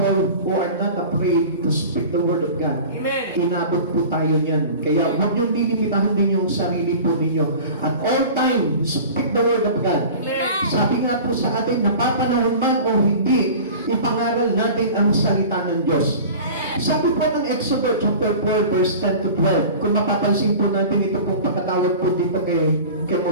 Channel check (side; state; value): both; inverted; correlation -0.38